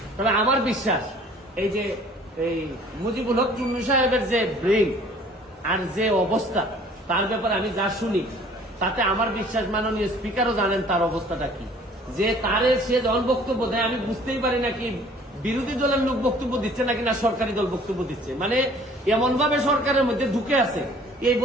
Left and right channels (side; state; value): both; normal; correlation 0.53